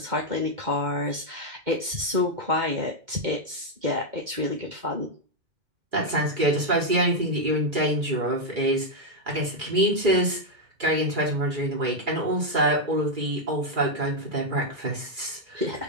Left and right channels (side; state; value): left; late; 2.3 ms